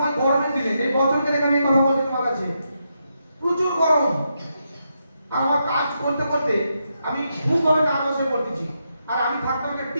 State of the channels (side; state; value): both; inverted; correlation -0.83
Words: গরমের দিনে, এই বছরের এখানে কথা বলছি তোমার কাছে, প্রচুর গরম। আর আমার কাজ করতে করতে আমি খুবভাবে নার্ভাস হয়ে পড়তেছি। আর আমি থাকতাম একটা